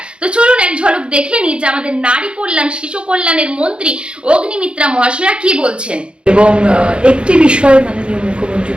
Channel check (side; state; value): left; late; 0.056 ms